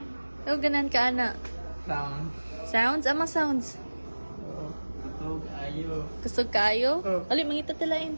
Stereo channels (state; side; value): inverted; both; correlation -1.00